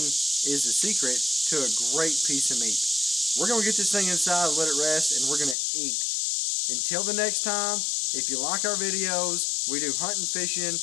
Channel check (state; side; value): drops out; right; at 5.6 s